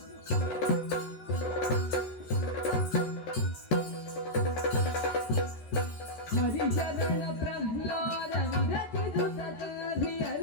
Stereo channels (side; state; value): right; late; 13 ms